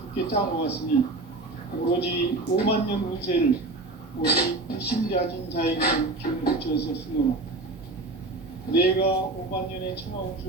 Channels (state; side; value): quieter; left; 3.1 dB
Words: 굳게 짜놓았으니 오로지 5만 년 운세를 오직 일심자진 자에게 기운을 붙여서 쓰노라. 내가 5만 년의 천하